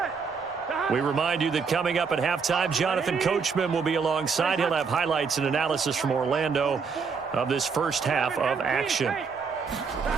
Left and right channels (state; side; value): quieter; left; 5.5 dB